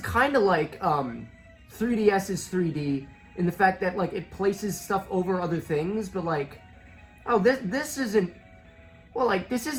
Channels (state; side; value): identical; both; correlation 1.00